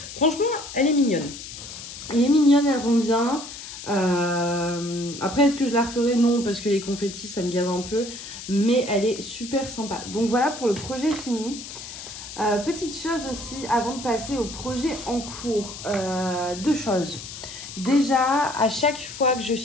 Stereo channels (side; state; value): left; noise; hiss, 11 dB below the sound